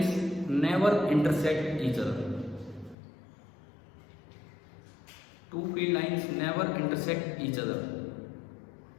never intersect each other. Two field lines never intersect each other.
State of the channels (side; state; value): right; drops out; at 3.0 s